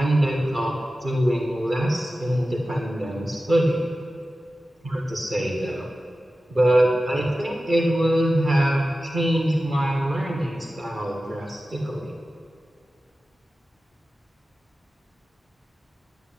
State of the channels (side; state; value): both; normal; correlation 0.95